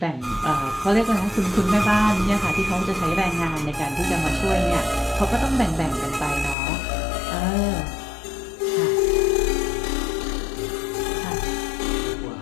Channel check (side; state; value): right; drops out; at 6.6 s